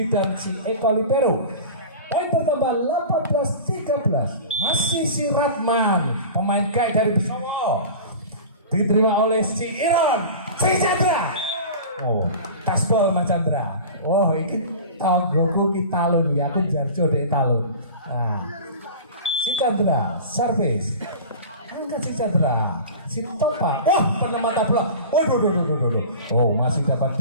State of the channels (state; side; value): inverted; both; correlation -0.35